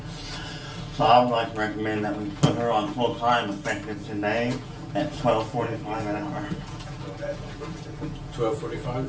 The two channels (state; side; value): identical; both; correlation 1.00